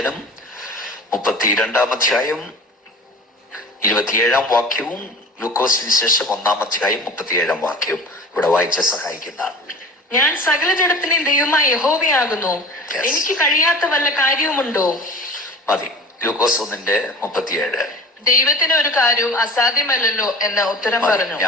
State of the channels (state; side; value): normal; both; correlation 0.39